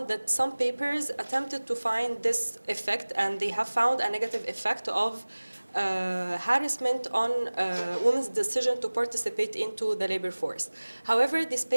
that some papers attempted to find this effect, and they have found a negative effect of harassment on women's decision to participate into the labor force. However, these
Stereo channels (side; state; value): both; inverted; correlation -1.00